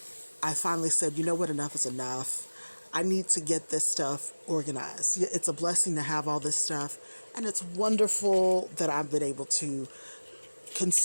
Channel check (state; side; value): inverted; both; correlation -1.00